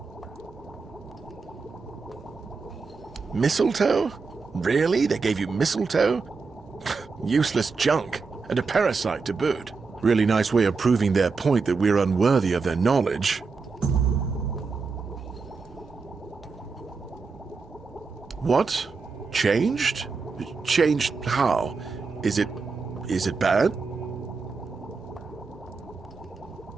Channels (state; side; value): quieter; left; 4.6 dB